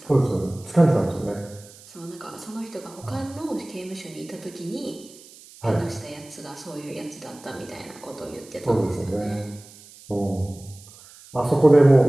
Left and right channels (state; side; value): noise; right; hiss, 21 dB below the sound